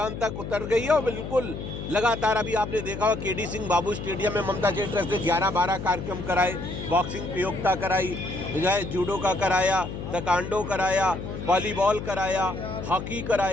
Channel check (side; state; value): left; noise; hum, 7 dB below the sound